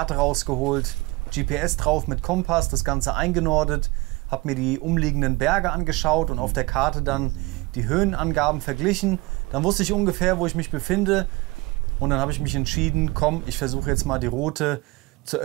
rausgeholt, GPS drauf mit Kompass, das Ganze eingenordet, habe mir die umliegenden Berge angeschaut und auf der Karte dann die Höhenangaben verglichen. Dann wusste ich ungefähr, wo ich mich befinde und dann habe ich mich entschieden, komm, ich versuche jetzt mal die Route zur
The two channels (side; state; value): left; quieter; 22.9 dB